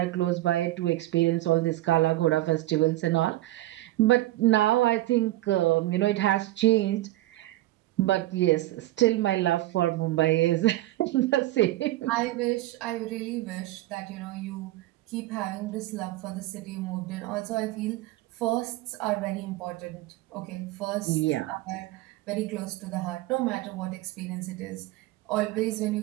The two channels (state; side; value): quieter; left; 16.9 dB